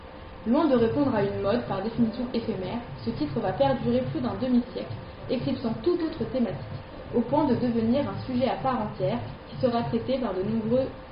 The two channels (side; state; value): both; identical; correlation 1.00